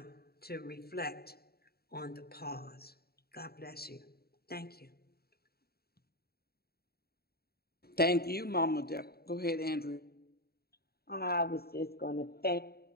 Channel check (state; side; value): late; right; 0.45 ms